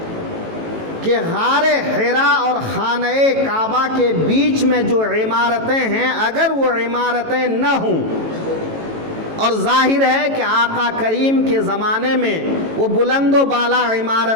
کہ غار حرا اور خانہ کعبہ کے بیچ میں جو عمارتیں ہیں، اگر وہ عمارتیں نہ ہوں، اور ظاہر ہے کہ آقا کریم کے زمانے میں وہ بلند و بالا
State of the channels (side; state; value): left; late; 18 ms